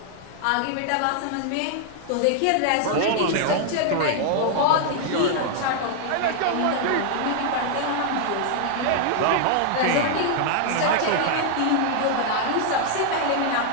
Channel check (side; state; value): both; different; correlation 0.00